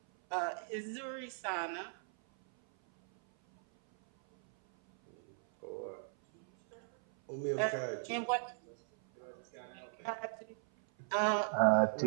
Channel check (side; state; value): left; silent; 53 dB below the other